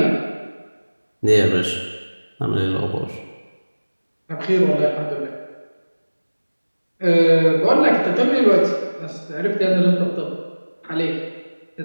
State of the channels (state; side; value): inverted; both; correlation -1.00